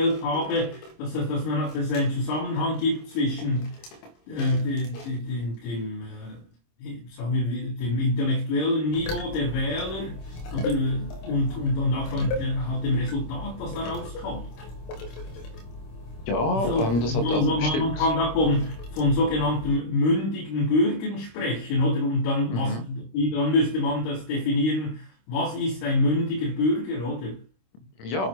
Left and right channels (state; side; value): late; right; 26 ms